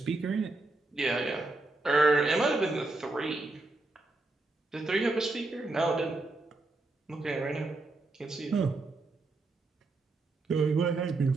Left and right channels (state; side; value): quieter; left; 3.1 dB